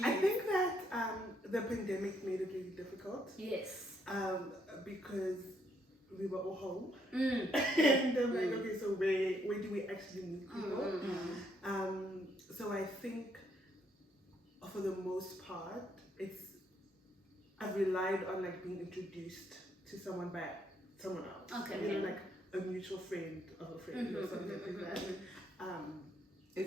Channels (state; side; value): normal; both; correlation 0.72